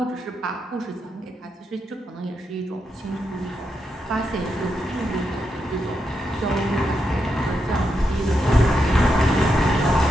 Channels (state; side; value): normal; both; correlation 0.84